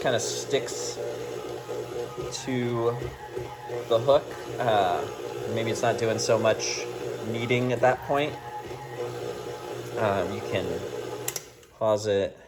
kind of sticks to the hook. Maybe it's not doing so much kneading at that point. You can pause it.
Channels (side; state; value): both; identical; correlation 1.00